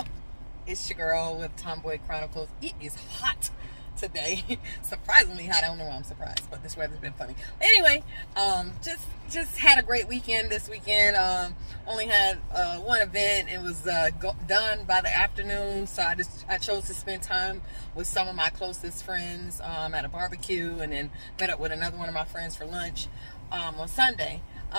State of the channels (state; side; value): inverted; both; correlation -1.00